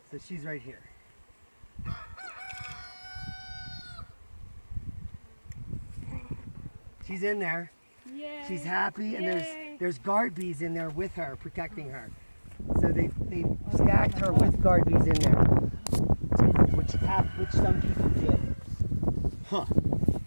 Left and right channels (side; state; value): both; inverted; correlation -1.00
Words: So she's right here. She's in there. Yay. She's happy, and Yay. there's guard bees in there with her, protecting her. So they stacked her with guard bees in there, which some people did. Huh.